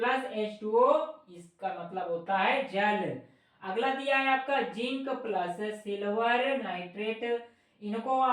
H2O, इसका मतलब होता है जल। अगला दिया है आपका जिंक प्लस सिल्वर नाइट्रेट, इनको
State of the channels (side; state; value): both; identical; correlation 1.00